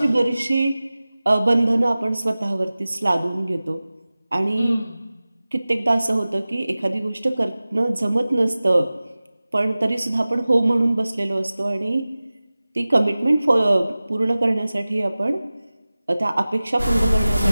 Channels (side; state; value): both; inverted; correlation -0.97